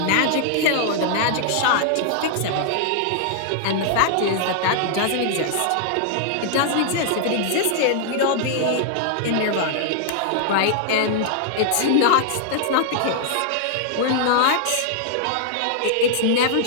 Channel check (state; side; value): different; both; correlation -0.01